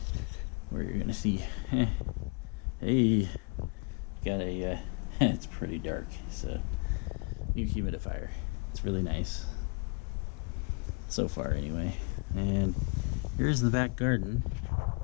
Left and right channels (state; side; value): quieter; right; 32.3 dB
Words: where you're gonna see, hey, got a, it's pretty dark. It's a new humidifier. It's really nice, so far anyway. And here's the back garden.